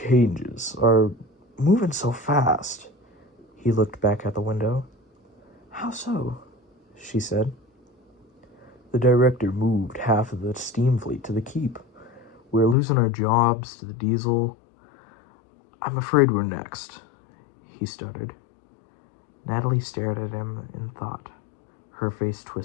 are moving so fast." He looked back at the window. "How so?" she said. "The director moved half of the steam fleet to the keep. We're losing our jobs to the diesel. I'm afraid we're next," he stuttered. Natalie stared at him in thought. Her face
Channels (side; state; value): right; drops out; at 12.8 s